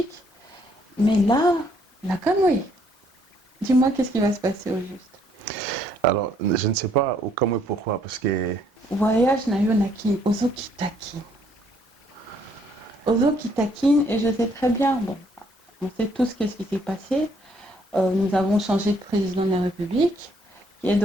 Mais là, la Kamwe. Dis-moi qu'est-ce qui va se passer au juste. Alors, je ne sais pas au Kamwe pourquoi, parce que... Voyage na yonaki, ozo kitakin. Ozo kitakin, et je sais très bien, bon, on sait tous qu'est-ce qui s'est passé. Nous avons changé de président de la République, qui est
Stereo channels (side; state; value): both; normal; correlation 0.67